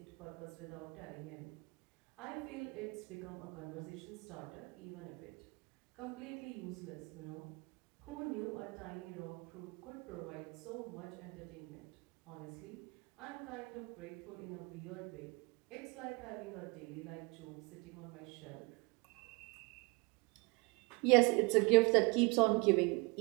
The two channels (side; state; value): left; quieter; 28.7 dB